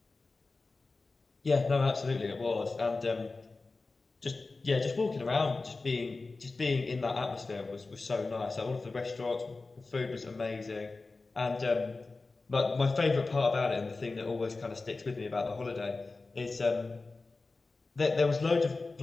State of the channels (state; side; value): quieter; right; 3.6 dB